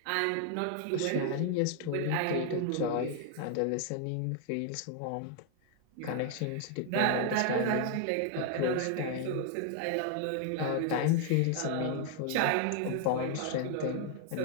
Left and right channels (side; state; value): both; different; correlation 0.00